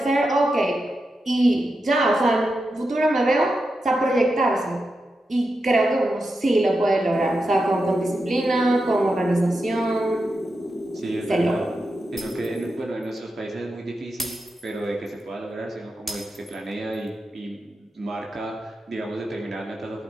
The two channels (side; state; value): both; normal; correlation 0.88